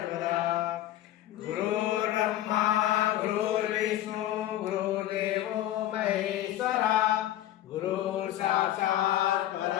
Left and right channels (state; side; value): quieter; right; 13.3 dB